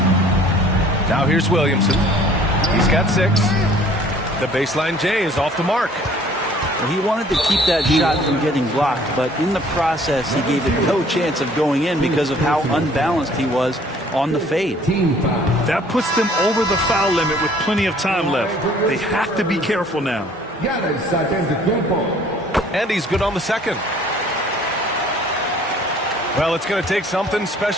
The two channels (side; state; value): both; normal; correlation 0.55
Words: Now here's Williamson. He's got 6. The baseline J is off the mark. Well, he wanted to keep that shot from getting blocked, but in the process, he gave it no chance of going in because of how unbalanced he was on the fade. That puts them over the foul limit with plenty of time left. They have to be careful now. And he's good on the second. Well, it's going to take something